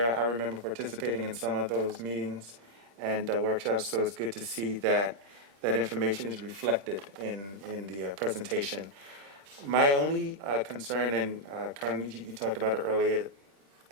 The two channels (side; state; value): left; late; 26 ms